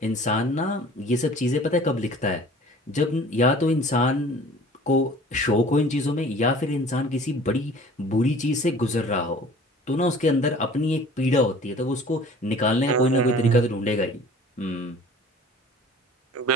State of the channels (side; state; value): both; normal; correlation 0.47